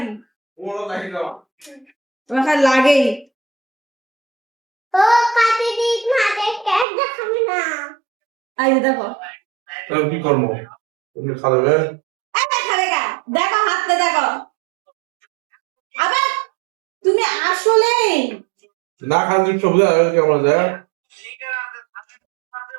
তোমার খালি লাগেই। ও কাটি দিস মাঝে কেক দেখাবি না। এই যে দেখো। কি করবো? তুমি খাবে? এই খাবে গা, দেখো হাতটা দেখো। আবার তুমি আসলেই না খালি সবজি আর কেমন যায়?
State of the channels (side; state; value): left; drops out; at 6.9 s